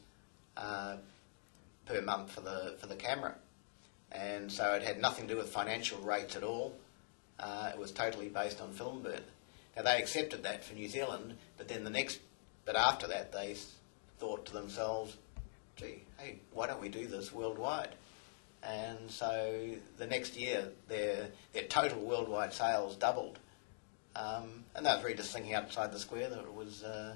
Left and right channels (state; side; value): silent; right; digital silence